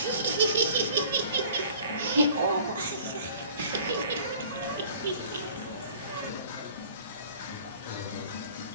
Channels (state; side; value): inverted; both; correlation -0.49